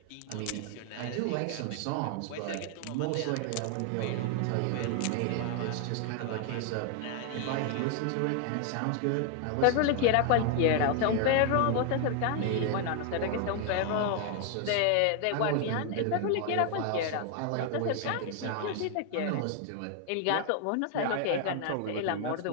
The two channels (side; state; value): both; different; correlation 0.00